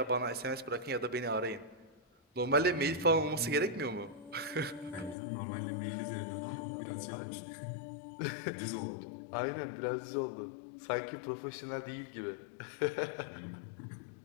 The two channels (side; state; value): right; drops out; at 5.2 s